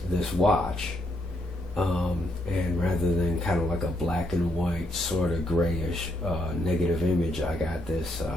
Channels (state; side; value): normal; both; correlation 0.76